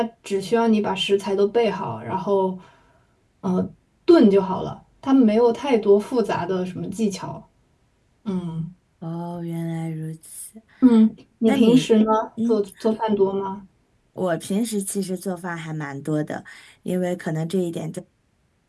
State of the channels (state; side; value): identical; both; correlation 1.00